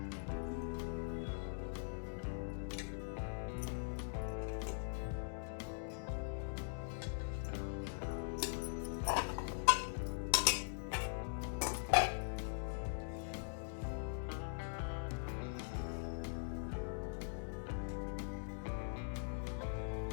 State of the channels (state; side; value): silent; right; digital silence